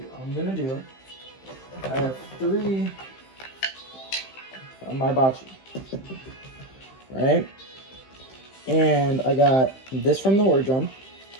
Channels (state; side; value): late; right; 15 ms